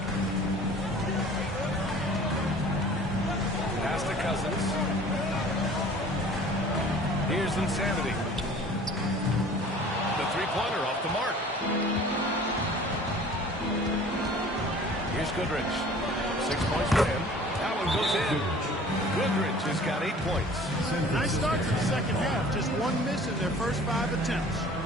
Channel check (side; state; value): both; normal; correlation 0.47